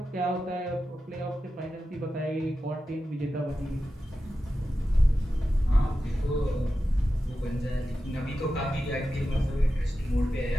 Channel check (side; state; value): both; normal; correlation 0.92